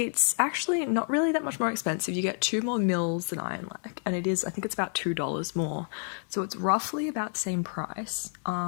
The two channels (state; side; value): silent; right; 57 dB below the other